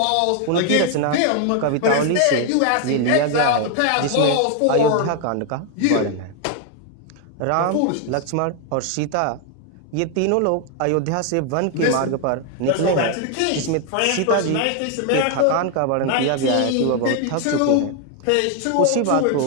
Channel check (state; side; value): different; both; correlation 0.00